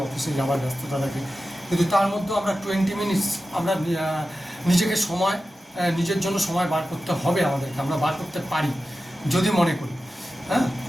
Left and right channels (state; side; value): normal; both; correlation 0.93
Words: অফিসে যাওয়ার ব্যস্ততা থাকে, কিন্তু তার মধ্যেও আমরা 20 মিনিটস আমরা নিজেকে সময়, নিজের জন্য সময় বার করতে হবে আমাদেরকে, আমরা বার করতে পারি যদি মনে করি। হ্যাঁ,